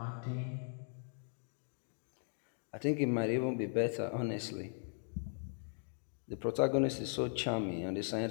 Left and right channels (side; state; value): right; silent; 52 dB below the other